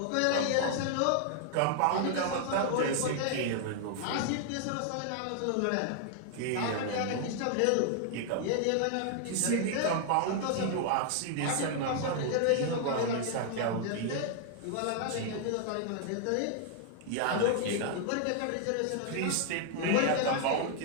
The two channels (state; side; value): different; both; correlation 0.00